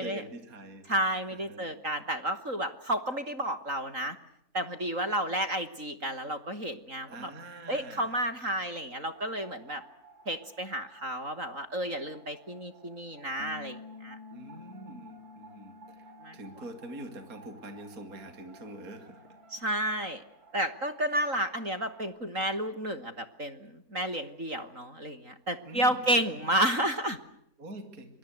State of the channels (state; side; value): late; left; 3.9 ms